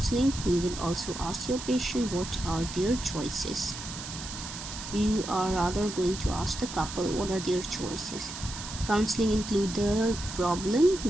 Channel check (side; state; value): right; noise; hiss, 9 dB below the sound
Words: you will also ask your patient what are their choices. You are rather going to ask the couple what are their choices. Counseling include the problem